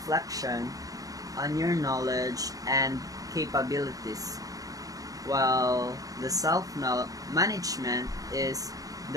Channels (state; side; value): late; left; 0.17 ms